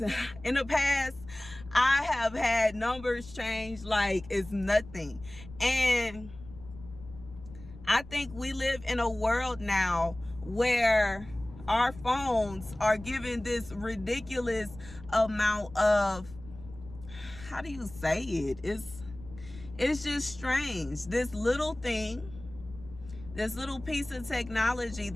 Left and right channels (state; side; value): noise; left; rumble, 17 dB below the sound